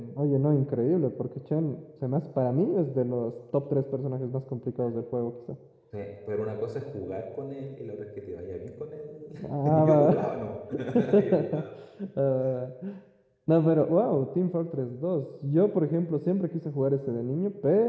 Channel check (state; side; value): identical; both; correlation 1.00